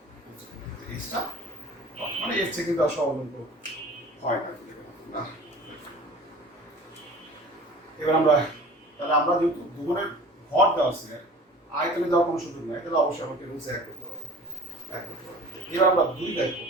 এসটা মানে এর থেকে কিন্তু আসলে অবলম্ব হয় না। এবার আমরা যেহেতু দ্রবণের ভর দেওয়া আছে, আয়তনে দেওয়ার কোনো সুযোগ নাই, তাহলে অবশ্যই আমাকে রুলস এক করতে হবে। এবার আমরা 2 দেখবো।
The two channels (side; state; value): both; normal; correlation 0.43